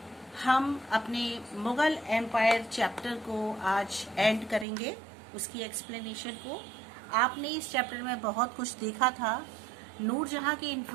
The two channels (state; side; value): drops out; left; at 4.7 s